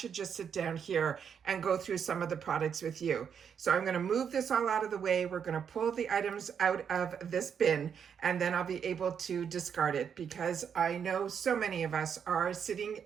just sit down here and go through some of the products with you. So I'm going to move this all out of the way. We're going to pull the items out of this bin, and then I'll be able to discard it, because I know so many of us are sitting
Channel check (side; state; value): left; quieter; 7.4 dB